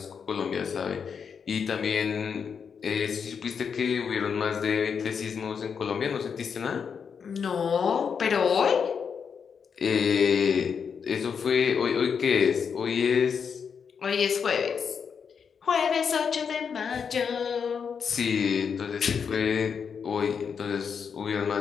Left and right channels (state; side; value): quieter; right; 6.5 dB